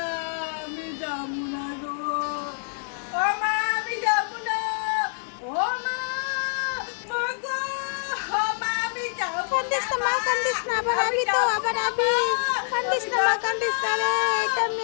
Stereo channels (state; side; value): silent; right; digital silence